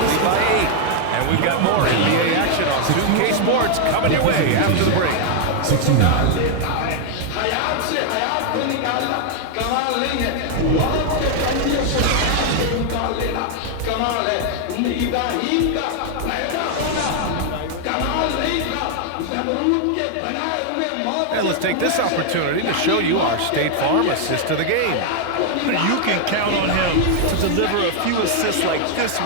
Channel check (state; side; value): different; both; correlation 0.00